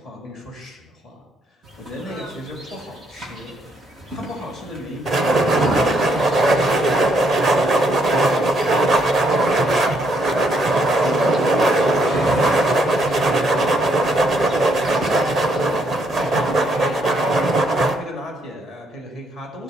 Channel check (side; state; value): both; normal; correlation 0.72